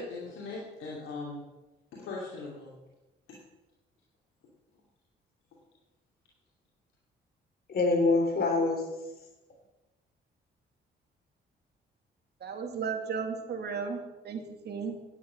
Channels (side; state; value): both; normal; correlation 0.41